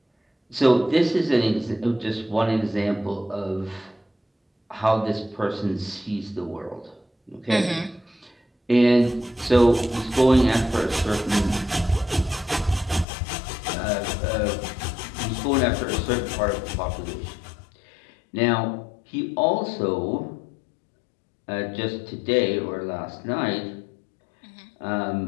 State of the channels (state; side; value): drops out; right; at 13.1 s